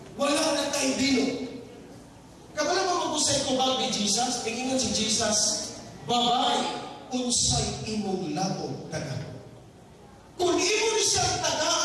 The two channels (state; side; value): identical; both; correlation 1.00